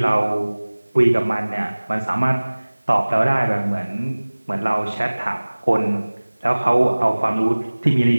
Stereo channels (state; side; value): inverted; both; correlation -1.00